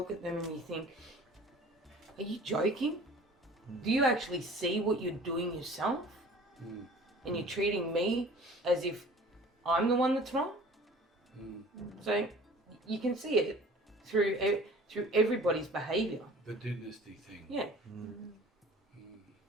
at them and you think, are you joking? Do you actually see what you're doing yourself? And you're treating me as if I'm the one that's wrong? So you can see it through everybody's behaviour. The dynasty thing. Yeah.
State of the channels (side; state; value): both; normal; correlation 0.46